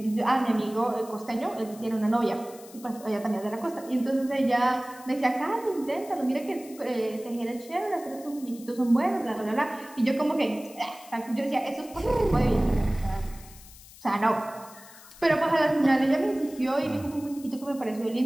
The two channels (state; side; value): noise; left; hiss, 20 dB below the sound